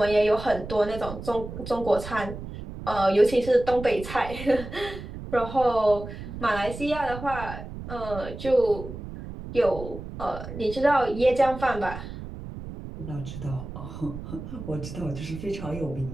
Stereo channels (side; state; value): right; noise; rumble, 10 dB below the sound